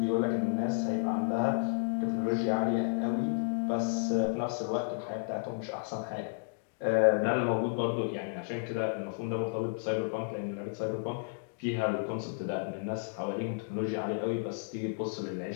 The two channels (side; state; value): right; silent; digital silence